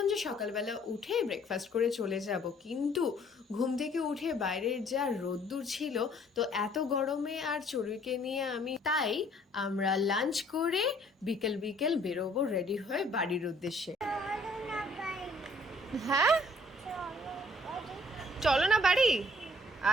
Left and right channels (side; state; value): both; normal; correlation 0.59